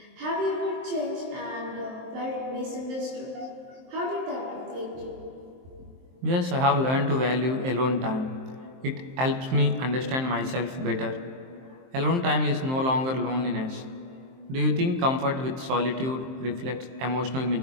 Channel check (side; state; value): left; late; 23 ms